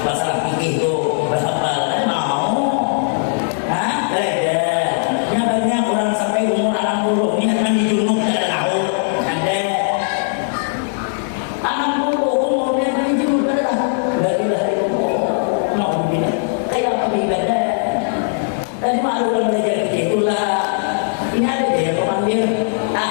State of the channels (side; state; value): right; silent; digital silence